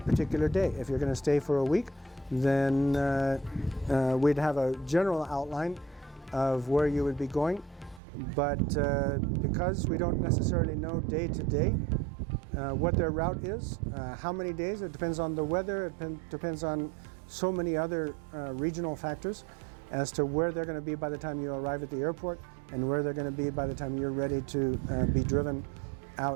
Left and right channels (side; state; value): left; drops out; at 8.0 s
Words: particular day. If you're going to stay for a week, then we'd have a general outline of where you would be going. But because we don't necessarily know day to day what their route is, how many days, it depends on the weather, it depends on so many other regional factors as to where they're going to be by the time you arrive at the airport and where they're going to be by the time you're ready to be driven